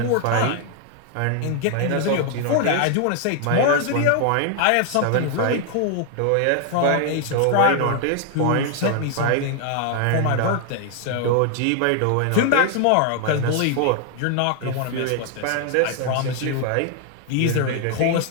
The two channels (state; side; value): different; both; correlation 0.00